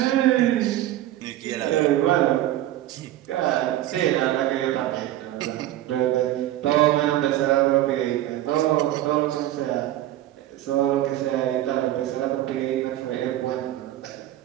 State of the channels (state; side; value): quieter; left; 14.0 dB